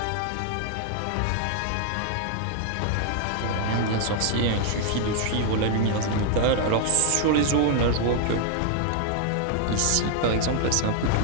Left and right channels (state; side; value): different; both; correlation 0.00